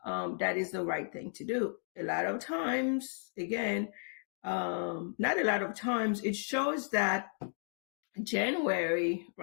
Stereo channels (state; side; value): silent; right; digital silence